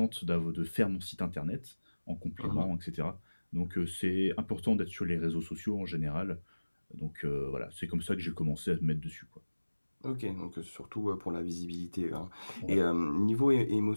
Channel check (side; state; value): both; inverted; correlation -1.00